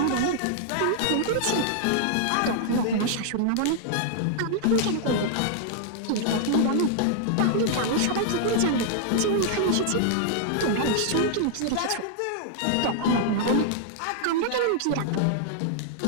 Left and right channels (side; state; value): both; different; correlation -0.01